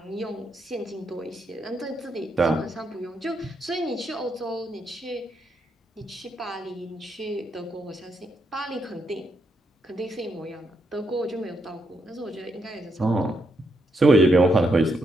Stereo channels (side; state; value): both; normal; correlation 0.79